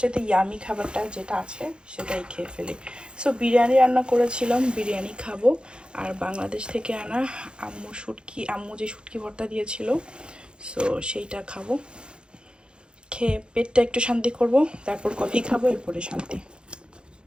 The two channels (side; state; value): left; late; 0.052 ms